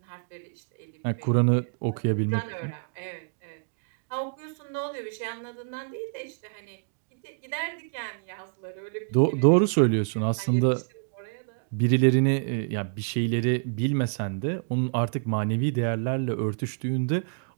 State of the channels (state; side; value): silent; left; digital silence